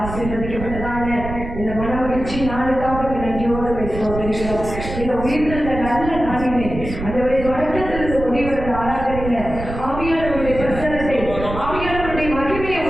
ஆசீர்வதிக்கப்பட்டதான இந்த மனமகிழ்ச்சி நாளுக்காக நன்றியோடு சோதரிக்கிறோம். இந்த உயிர்த்த நல்ல நாளிலே ஆண்டவரே தொடக்கத்திலிருந்து முடிவுற ஆராதனையில ஆவியானவருடைய பிரசனத்தை ஆவியானவருடைய மகிமையை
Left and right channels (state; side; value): noise; right; rumble, 8 dB below the sound